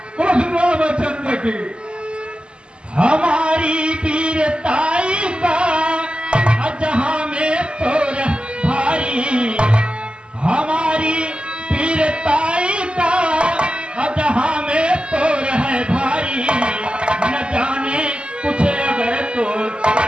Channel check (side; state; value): left; late; 0.052 ms